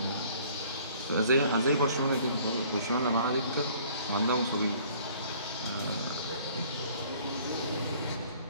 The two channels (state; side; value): inverted; both; correlation -0.55